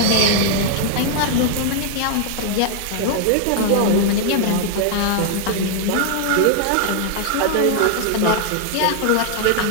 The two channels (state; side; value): different; both; correlation 0.00